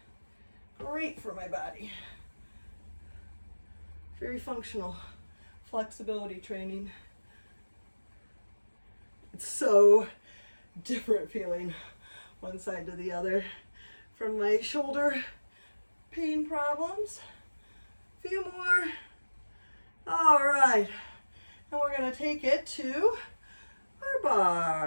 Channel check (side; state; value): both; inverted; correlation -1.00